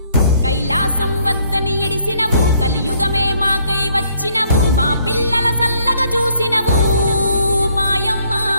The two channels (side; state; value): both; inverted; correlation -0.66